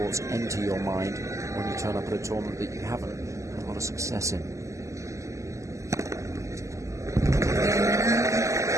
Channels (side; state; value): left; late; 0.15 ms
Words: enter your mind when you turn up at a tournament that you haven't had a lot of success in.